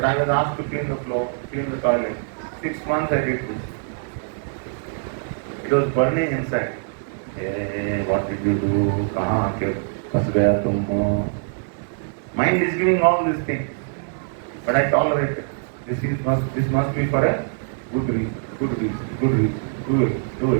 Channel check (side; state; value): left; silent; digital silence